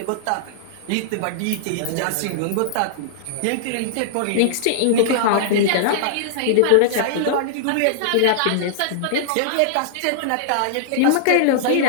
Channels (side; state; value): both; different; correlation -0.01